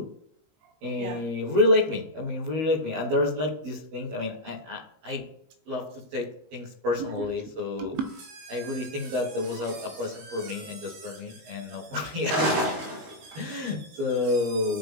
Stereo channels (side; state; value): left; late; 19 ms